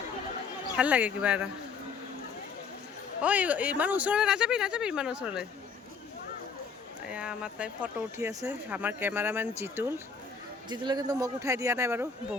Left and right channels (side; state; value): right; quieter; 5.4 dB